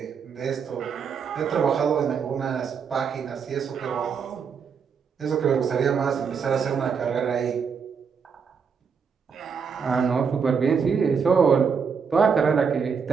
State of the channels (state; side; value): quieter; left; 6.2 dB